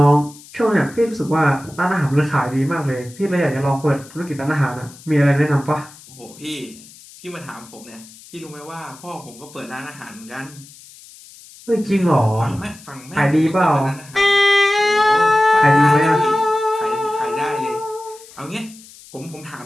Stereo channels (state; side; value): noise; left; hiss, 21 dB below the sound